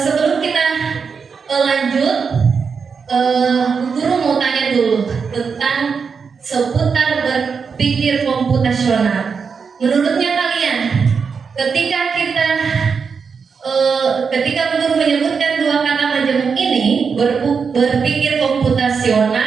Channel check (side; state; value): left; quieter; 5.7 dB